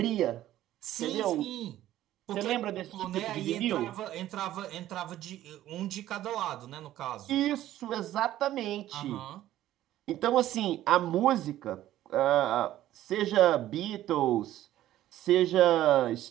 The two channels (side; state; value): left; quieter; 13.6 dB